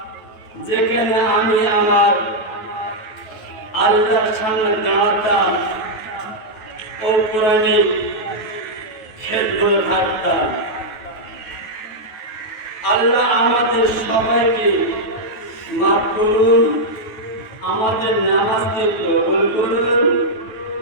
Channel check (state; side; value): late; right; 9.2 ms